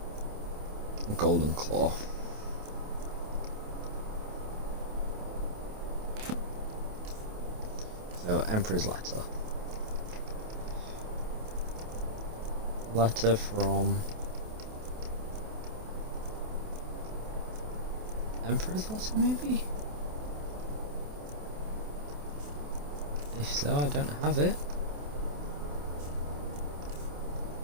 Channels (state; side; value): late; left; 28 ms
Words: Golden Claw. So, Emperor's letter. Letter from... Emperor's letter, maybe? If so, I don't have it.